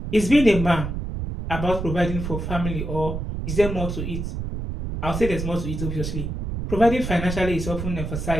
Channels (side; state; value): right; noise; rumble, 5 dB below the sound